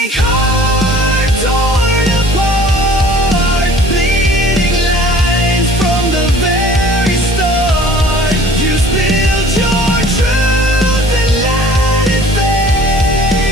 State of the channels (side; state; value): right; noise; hiss, 15 dB below the sound